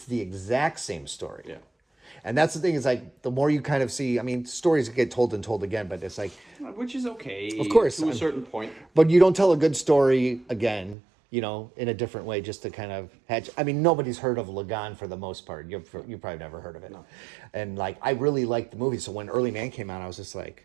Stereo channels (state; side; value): drops out; left; at 11.0 s